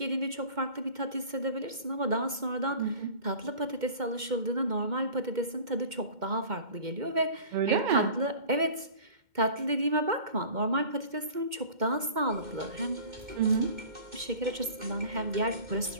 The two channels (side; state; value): left; late; 2.1 ms